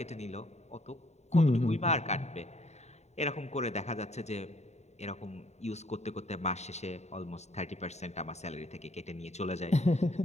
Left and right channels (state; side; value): late; right; 0.32 ms